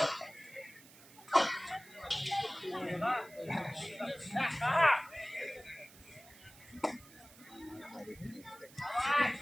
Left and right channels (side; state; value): right; noise; hiss, 21 dB below the sound